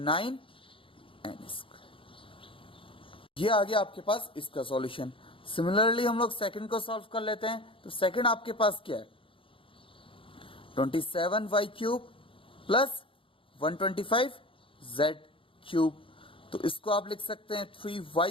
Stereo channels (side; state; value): right; late; 0.25 ms